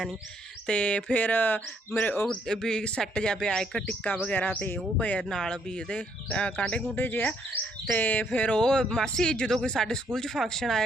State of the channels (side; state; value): both; normal; correlation 0.70